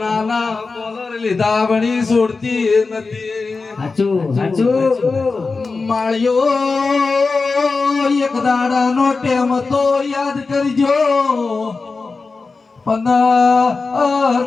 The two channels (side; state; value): right; quieter; 4.2 dB